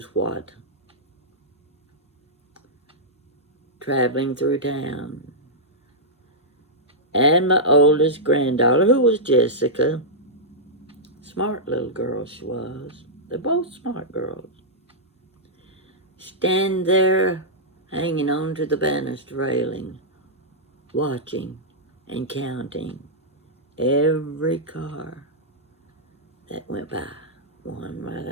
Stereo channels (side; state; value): both; normal; correlation -0.11